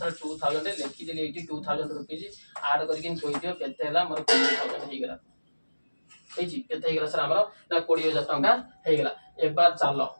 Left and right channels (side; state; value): both; inverted; correlation -1.00